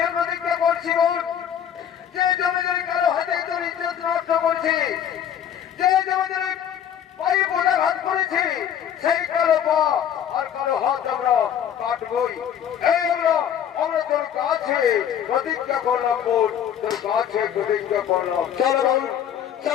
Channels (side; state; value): right; quieter; 9.3 dB